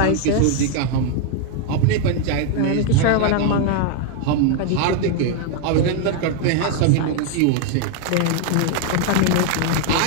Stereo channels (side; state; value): both; different; correlation 0.00